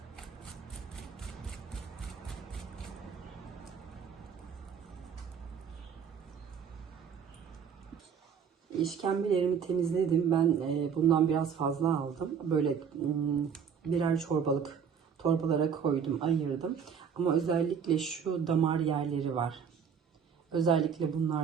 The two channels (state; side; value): quieter; left; 7.1 dB